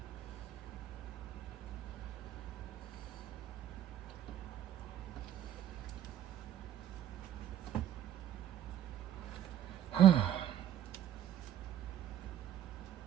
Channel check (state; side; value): quieter; left; 11.2 dB